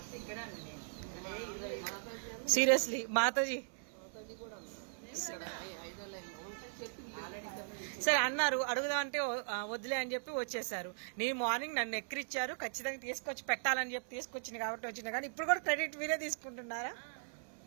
సీరియస్లీ మాతాజీ సరే అన్నారు అడుగుదాం అంటే వద్దులే అని చెప్పి వచ్చేసారు. నేను మార్నింగ్ నన్ను ఎక్కిరిచ్చారు ఖచ్చితంగా తీసుకొచ్చి పెట్టాలని చెప్పి తీసుకొచ్చింది కాబట్టి వచ్చింది. కానీ ఇప్పుడు కూడా క్రెడిట్ మీరే తీసుకుంటున్నారా?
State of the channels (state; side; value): silent; left; 52 dB below the other